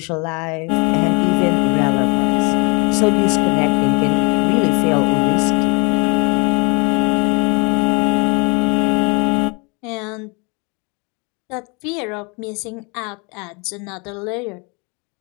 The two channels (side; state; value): right; quieter; 31.0 dB